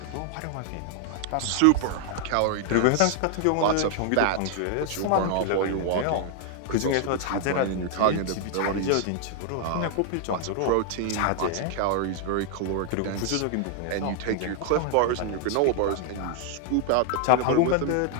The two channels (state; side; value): different; both; correlation 0.00